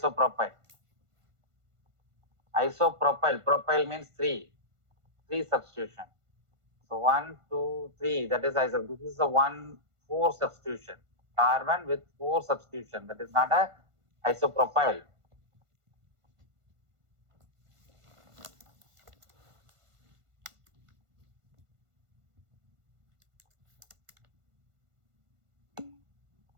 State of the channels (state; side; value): late; left; 1.5 ms